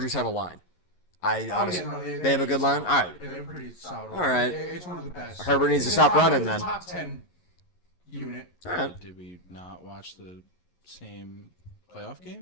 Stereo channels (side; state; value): right; late; 11 ms